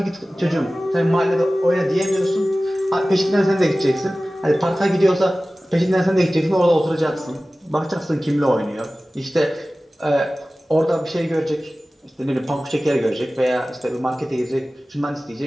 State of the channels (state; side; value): normal; both; correlation 0.97